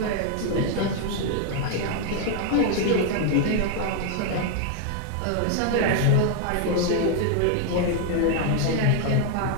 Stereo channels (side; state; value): both; different; correlation 0.00